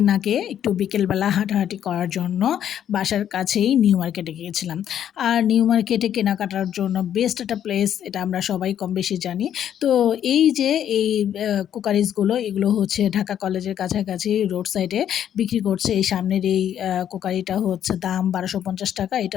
আগে একটু বিকেলবেলা হাঁটাহাঁটি করার জন্য বাসার কাছেই নিউ মার্কেটে গিয়েছিলাম। আর নিউ মার্কেটে কেনাকাটার জন্য বেস্ট একটা প্লেস, এটা আমরা সবাই কম বেশি জানি। তো এই যে এই কুকারিজগুলো, এগুলো হচ্ছে ঢাকা কলেজের কাছাকাছি রোড সাইডে বিক্রি করছে। এই সামনের এই কুকারিটা হচ্ছে দাম ১২৫০ টাকা।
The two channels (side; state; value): right; quieter; 10.0 dB